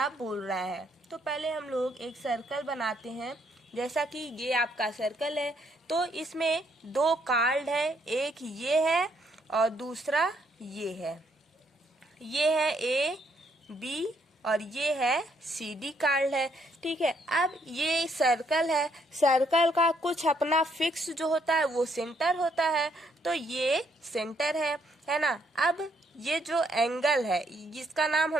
बोल रहा है। तो पहले हम लोग एक सर्कल बनाते हैं। जैसा कि ये आपका सर्कल है, तो इसमें दो कार्ड है, एक ये है और दूसरा ये है। ये है ए बी और ये है सी डी कार्ड है। ठीक है, अब ये सर्कल है, सर्कल का कुछ अपना फिक्स जो होता है वो सेंटर होता है, तो ये सेंटर है ना। अब ये जो एंगल है जिसका नाम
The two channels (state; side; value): normal; both; correlation 0.71